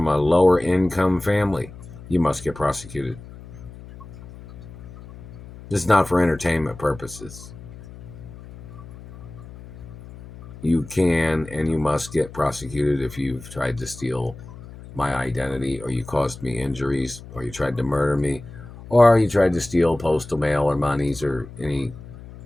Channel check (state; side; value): noise; left; hum, 16 dB below the sound